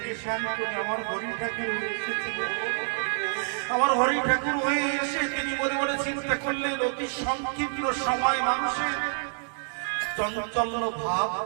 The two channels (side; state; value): left; silent; 60 dB below the other